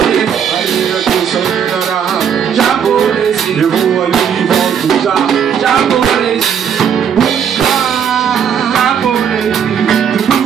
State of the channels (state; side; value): quieter; left; 7.9 dB